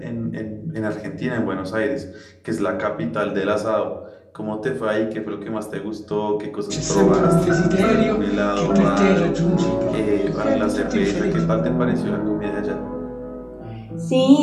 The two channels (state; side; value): identical; both; correlation 1.00